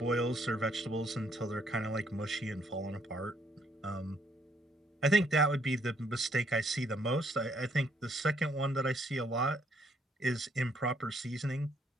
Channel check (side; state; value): both; normal; correlation 0.69